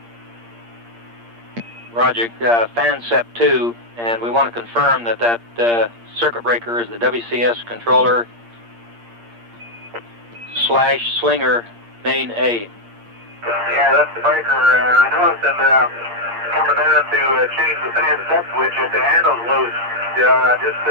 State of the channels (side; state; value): left; late; 8.6 ms